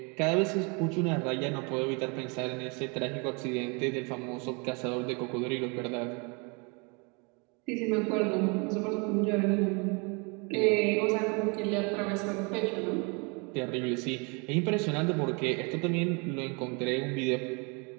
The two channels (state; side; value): quieter; left; 31.8 dB